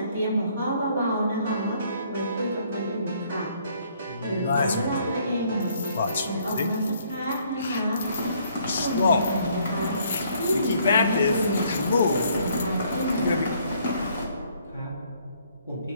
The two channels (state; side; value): inverted; both; correlation -0.65